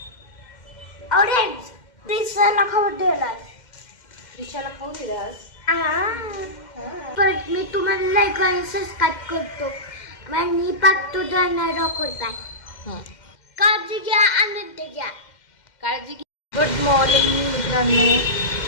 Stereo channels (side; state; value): right; late; 2.1 ms